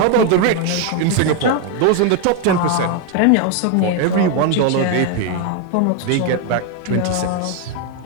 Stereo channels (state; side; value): different; both; correlation 0.01